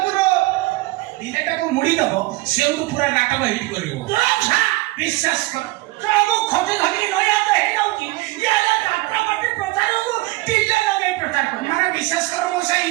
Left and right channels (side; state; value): left; quieter; 20.8 dB